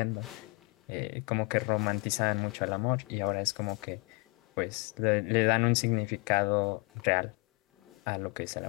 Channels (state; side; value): quieter; right; 29.2 dB